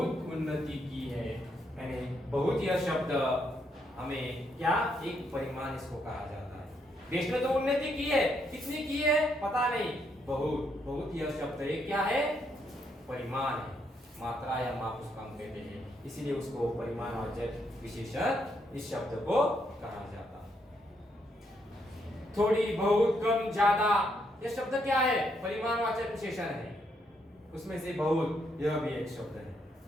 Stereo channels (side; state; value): both; normal; correlation 0.76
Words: उन्नति की है। यानी बहुत यह शब्द हमें क्या, एक परिमाण इसको कहा जाता है। देश ने तो उन्नति की है, कितनी की है पता नहीं, बहुत। बहुत यह शब्द एक क्या है? परिमाण है, मात्रा या माप उसका हम कहते हैं, इसीलिए उसको परिमाणवाचक विशेषण इस शब्द को कहा जाता है। थोड़ी, बहुत, कम, ज्यादा, यह शब्द क्या है? परिमाणवाचक विशेषण है। उसमें से बहुत यह भी एक शब्द है।